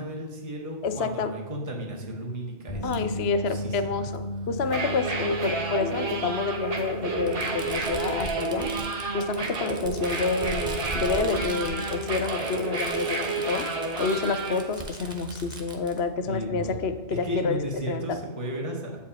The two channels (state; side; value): late; right; 2.0 ms